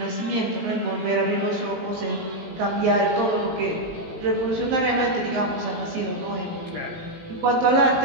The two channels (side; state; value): left; late; 17 ms